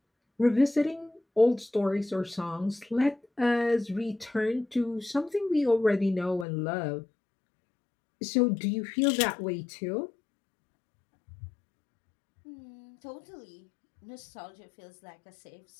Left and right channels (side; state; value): right; drops out; at 6.5 s